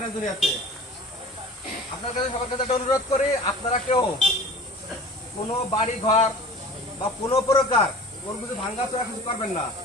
না দুনিয়াতে। আপনার কাছে সবার কাছে একটা অনুরোধ করি, আপনারা কেউ কোনো বাড়ি ঘর বা কোনো প্রকার কোনো কিছু ভাঙ্গাচোরা কিছু করবেন না।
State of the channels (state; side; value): normal; both; correlation 0.41